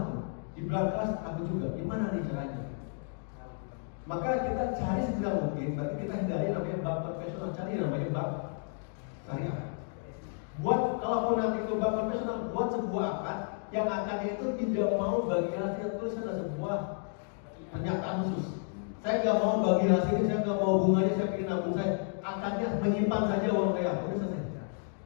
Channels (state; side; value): silent; right; 57 dB below the other